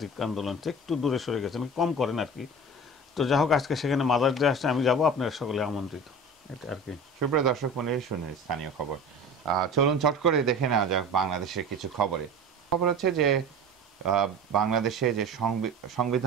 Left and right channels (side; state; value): both; normal; correlation 0.36